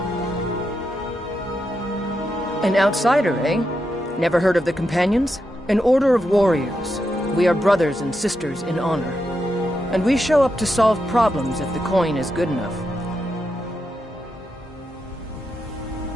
An outsider, eh? Never heard of the Companions? An order of warriors. We are brothers and sisters in honor. And we show up to solve problems if the coin is good enough.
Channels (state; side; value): normal; both; correlation 0.85